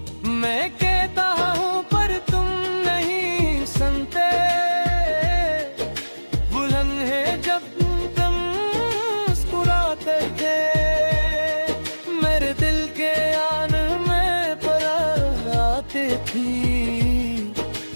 मैं कहता हूँ पर तुम नहीं सुनते, बुलंद है जब तुम मुस्कुराते थे, मेरे दिल के आन में पर आती थी।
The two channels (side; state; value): both; inverted; correlation -1.00